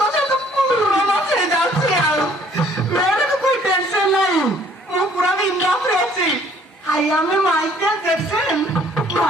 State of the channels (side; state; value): both; normal; correlation 0.59